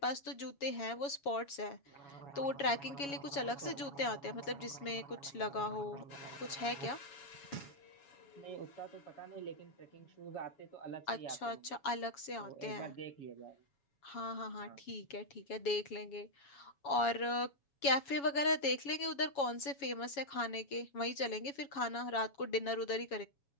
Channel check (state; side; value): late; right; 7.2 ms